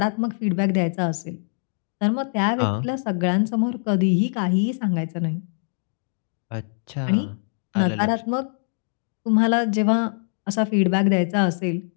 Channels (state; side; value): silent; right; 63 dB below the other